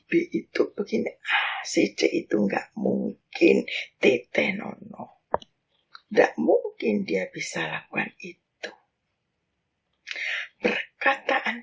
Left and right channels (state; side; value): identical; both; correlation 1.00